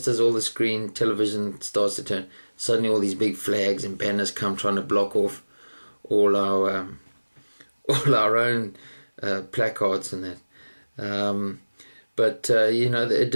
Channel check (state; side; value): inverted; both; correlation -1.00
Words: as all the screen television starts to turn, suddenly all these big flags and banners come trying to block off all our own placards and that. But it